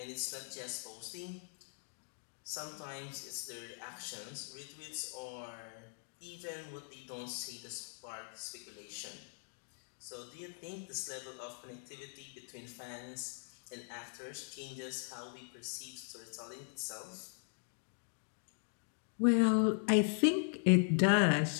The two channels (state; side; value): silent; right; digital silence